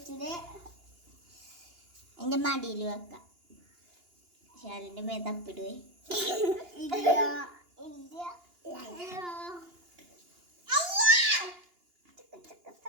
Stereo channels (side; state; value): left; late; 2.8 ms